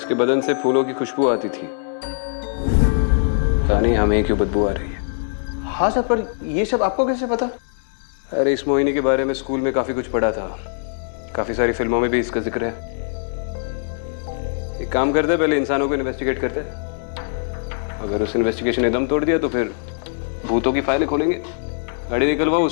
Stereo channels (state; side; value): silent; right; 63 dB below the other